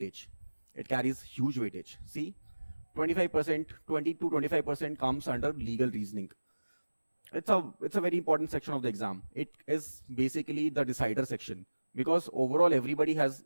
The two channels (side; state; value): both; inverted; correlation -1.00